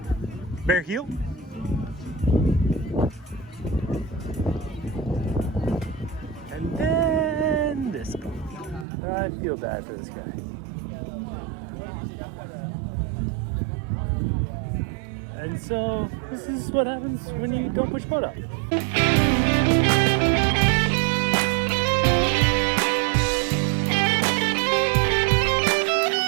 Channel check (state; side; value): drops out; left; at 8.8 s